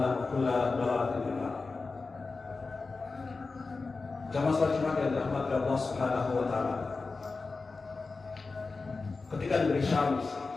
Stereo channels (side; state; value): right; quieter; 4.0 dB